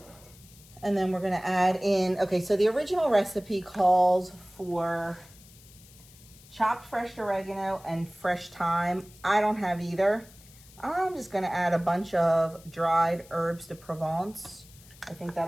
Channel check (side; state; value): left; noise; hiss, 23 dB below the sound